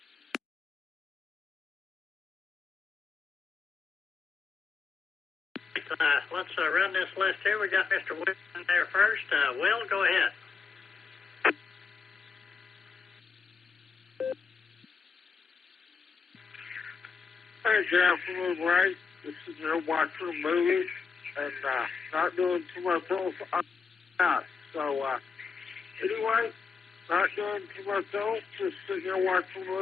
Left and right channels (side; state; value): right; quieter; 5.2 dB